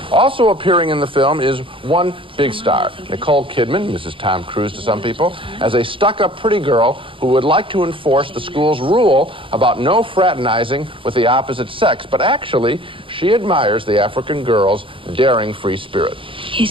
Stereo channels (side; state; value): left; late; 0.25 ms